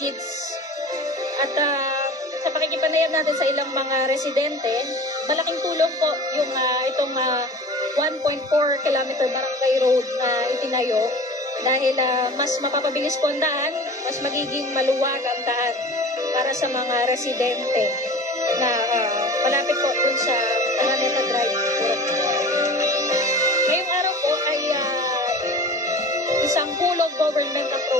At sa pakikipanayam natin sa ilang mga residente, malaking tulong po yung itong 1.4 kilometer Barangay Road na itinayo dahil mas mapapabilis po ang daan, mas magiging maluwag ang daan para sa mga residente na malapit po dun sa Araneta Drive. Ngayong araw po ay isang whole of government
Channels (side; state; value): both; normal; correlation 0.39